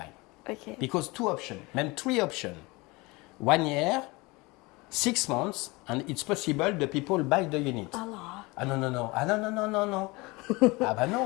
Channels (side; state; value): right; quieter; 24.1 dB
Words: Okay. Because 2 options, même 3 options. 1 year, 6 months, and it's possible the people buy the unit. Alors. Ah non. Ah bah